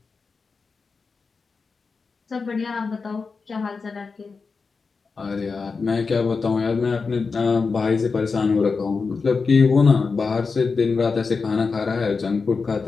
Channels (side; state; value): right; quieter; 4.7 dB